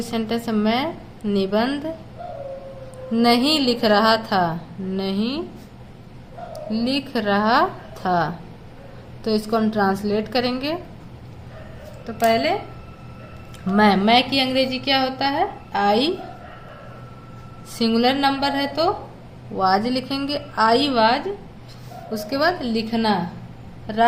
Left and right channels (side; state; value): both; identical; correlation 1.00